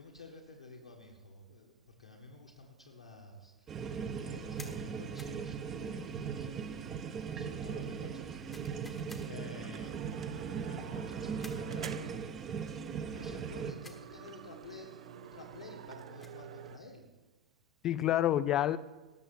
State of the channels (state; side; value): normal; both; correlation 0.33